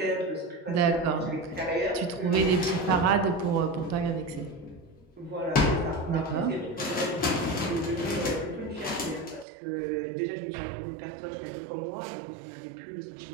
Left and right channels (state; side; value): drops out; left; at 9.5 s